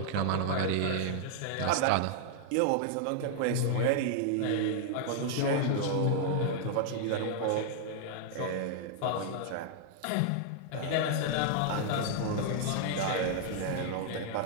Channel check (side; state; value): both; different; correlation -0.01